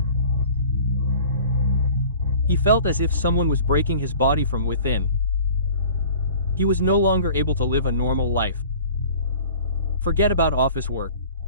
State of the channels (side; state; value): both; inverted; correlation -0.45